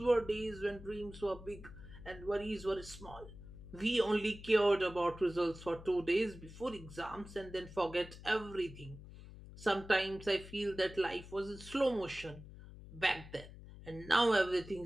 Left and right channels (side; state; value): left; noise; hum, 15 dB below the sound